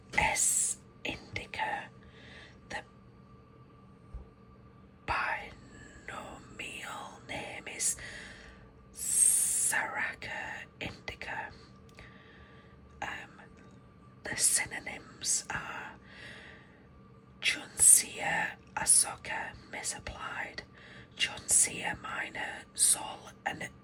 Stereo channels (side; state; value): both; identical; correlation 1.00